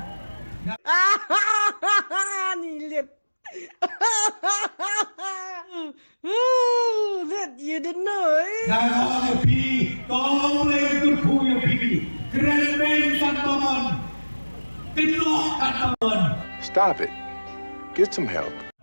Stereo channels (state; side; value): inverted; both; correlation -1.00